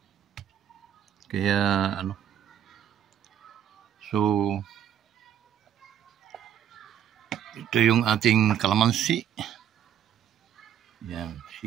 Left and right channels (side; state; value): left; quieter; 9.7 dB